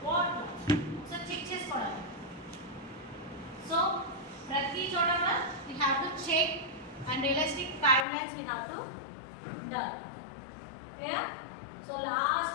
what, so check చేసుకోవడానికి. సో ప్రతి చోట we have to check and realistic timelines we have to done. ఓకేనా. సో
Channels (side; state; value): right; drops out; at 8.1 s